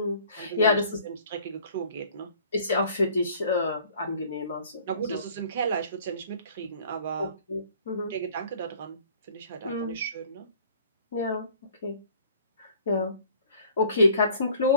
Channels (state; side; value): inverted; both; correlation -0.54